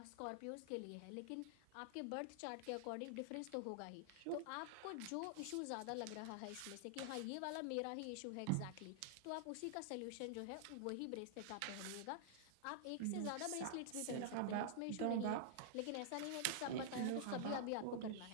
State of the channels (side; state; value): both; different; correlation -0.01